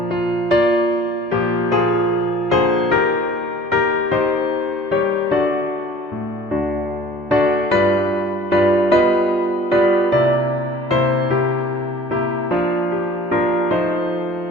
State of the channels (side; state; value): both; normal; correlation 0.47